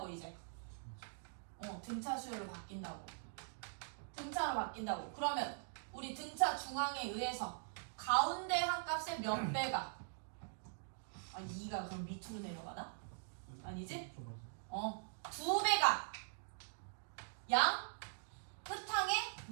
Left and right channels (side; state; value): left; silent; digital silence